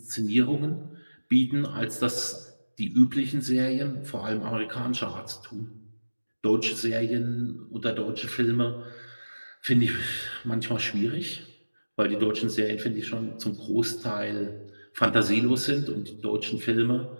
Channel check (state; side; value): inverted; both; correlation -1.00